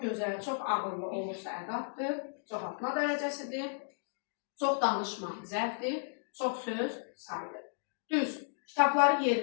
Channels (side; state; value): right; silent; digital silence